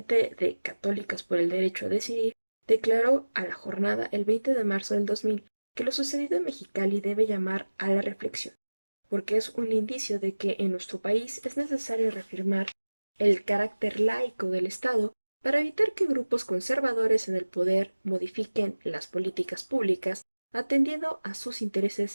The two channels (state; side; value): inverted; both; correlation -1.00